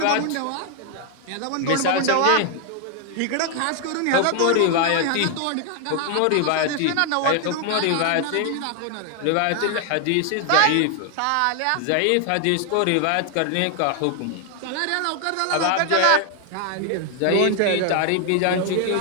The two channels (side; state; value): both; different; correlation 0.00